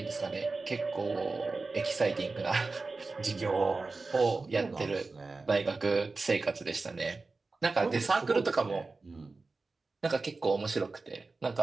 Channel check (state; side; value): quieter; left; 3.8 dB